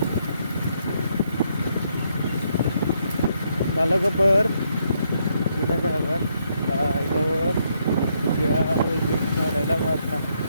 kalau keber kita jangan itu dia izin ada nama ini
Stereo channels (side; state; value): both; inverted; correlation -0.75